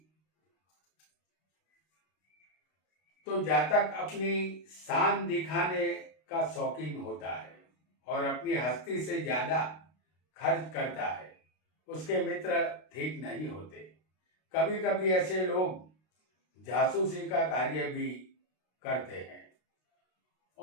तो जातक अपनी शान दिखाने का शौकीन होता है और अपनी हस्ती से ज्यादा खर्च करता है। उसके मित्र ठीक नहीं होते। कभी कभी ऐसे लोग जासूसी का कार्य भी करते हैं।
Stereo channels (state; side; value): late; right; 32 ms